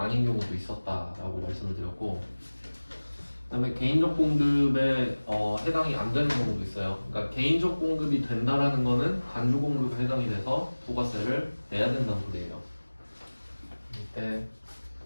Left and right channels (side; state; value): both; inverted; correlation -1.00